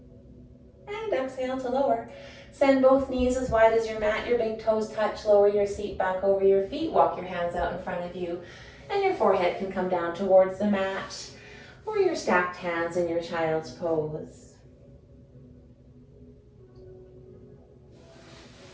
And exhale to lower. Send both knees as wide as your mat. Your big toes touch. Lower your seat back over your feet. Walk your hands out in front of you. And your forehead can come down towards the mat, or your stacked hands in your child's pose.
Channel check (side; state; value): both; identical; correlation 1.00